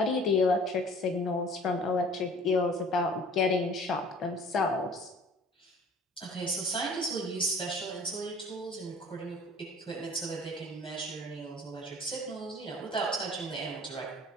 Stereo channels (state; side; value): normal; both; correlation 0.48